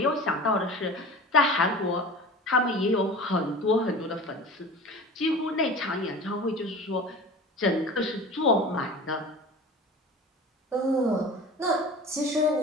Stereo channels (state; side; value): normal; both; correlation 0.36